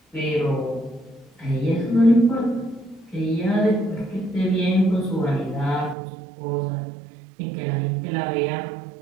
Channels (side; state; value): left; drops out; at 6.0 s